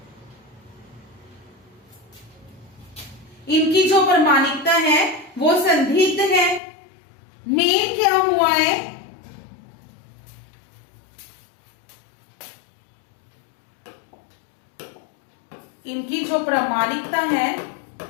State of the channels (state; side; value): drops out; right; at 6.6 s